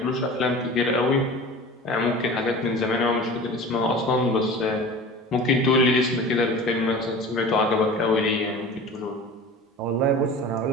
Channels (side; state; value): both; normal; correlation 0.37